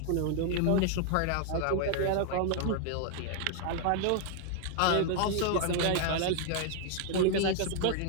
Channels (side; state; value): both; different; correlation 0.00